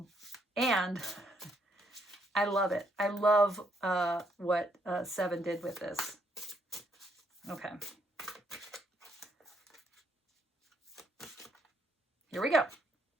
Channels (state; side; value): normal; both; correlation 0.72